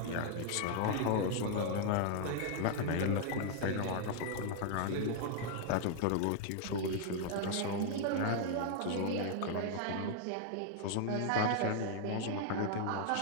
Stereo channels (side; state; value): both; different; correlation 0.00